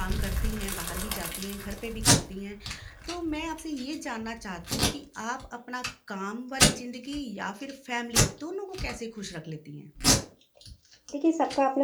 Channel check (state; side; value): identical; both; correlation 1.00